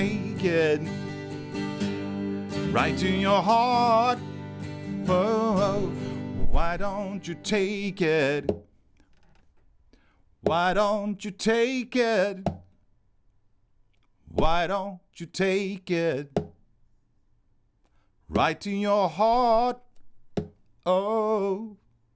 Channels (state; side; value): identical; both; correlation 1.00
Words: it right to your heart? Oh, why don't you take it? Why don't you take it? Why don't you take it right to your heart? Oh.